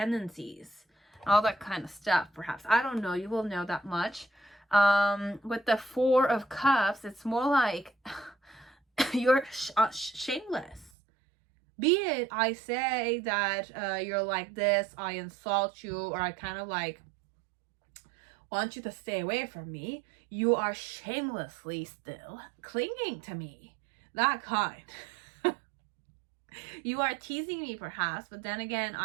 all that kind of stuff. Perhaps, I don't know, you will know that much. With the Four of Cups, it's more like you're shameless. Be it I say that you're like this, I insult you, or I kind of like want you to stay away from me, you are shamelessly still clinging to me. That kind. You are teasing me perhaps, but then again,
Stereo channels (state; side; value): drops out; left; at 10.9 s